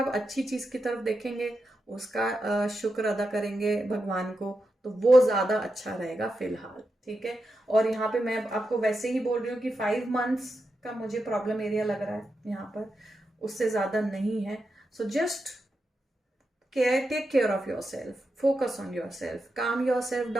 अच्छी चीज़ की तरफ देखेंगे, उसका शुक्र अदा करेंगे भगवान को, तो वो ज़्यादा अच्छा रहेगा फिलहाल, ठीक है। और यहाँ पे मैं आपको वैसे ही बोल रही हूँ कि 5 मंथ्स का मुझे प्रॉब्लम एरिया लग रहा है यहाँ पर, उससे ज़्यादा नहीं है। So just take care of yourself, focus on yourself, calm yourself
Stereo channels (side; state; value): both; normal; correlation 0.87